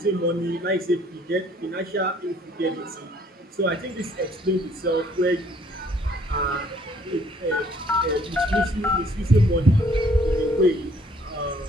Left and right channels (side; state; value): both; normal; correlation 0.61